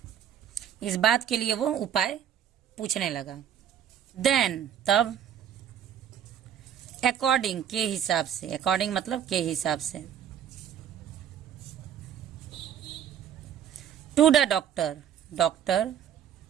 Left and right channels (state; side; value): quieter; left; 9.4 dB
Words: बात के लिए वो उपाय पूछने लगा। देन तब, अकॉर्डिंग के हिसाब से, अकॉर्डिंग मतलब के हिसाब से, टू द